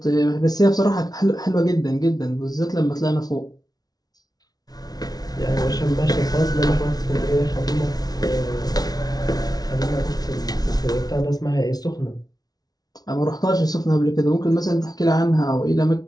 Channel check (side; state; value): right; late; 0.19 ms